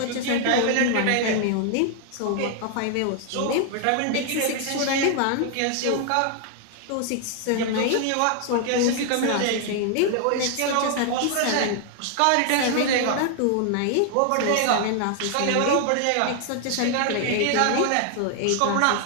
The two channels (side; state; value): both; different; correlation 0.00